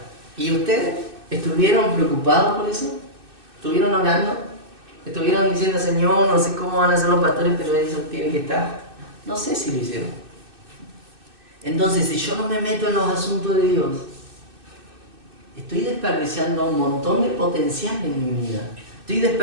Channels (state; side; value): late; left; 2.6 ms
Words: ¿Y ustedes estuvieron preocupados por eso? ¿Estuvieron orando? ¿Estuvieron diciendo, Señor, no sé cómo van a ser los pastores, pero eso tiene que estar? No sé si lo hicieron. Entonces, si yo no me meto en los asuntos de Dios, estoy desperdiciando un montón de potencial en mi vida. Estoy